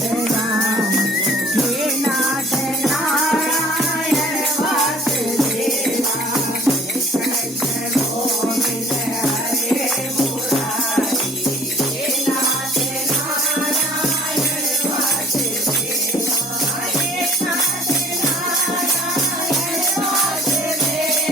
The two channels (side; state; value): both; normal; correlation 0.53